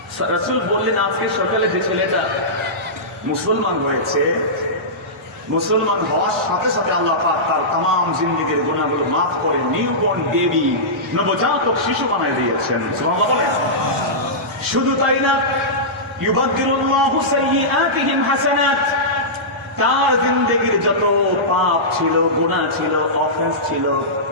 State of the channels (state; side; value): normal; both; correlation -0.16